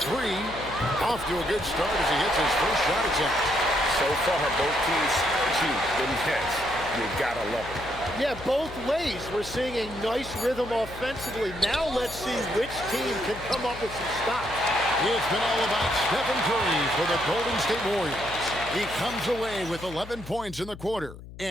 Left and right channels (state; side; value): noise; left; hum, 15 dB below the sound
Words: three. Off to a good start as he hits his first shot attempt. So far, both teams scorching the nets. You gotta love it. Yeah, both ways. We're seeing a nice rhythm offensively. Now let's see which team can come up with some stops. It's been all about Stephen Curry for the Golden State Warriors. He comes away with 11 points in the quarter